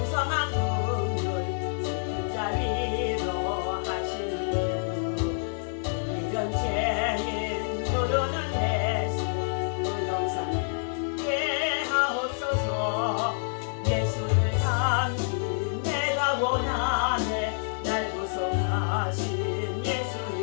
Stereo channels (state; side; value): silent; right; digital silence